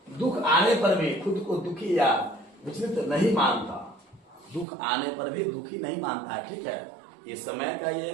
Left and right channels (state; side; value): drops out; left; at 4.7 s